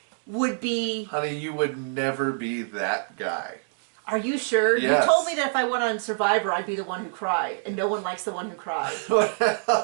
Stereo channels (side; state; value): left; silent; digital silence